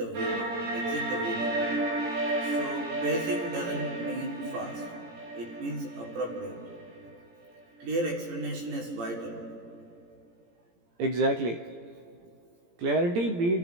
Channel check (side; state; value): left; late; 17 ms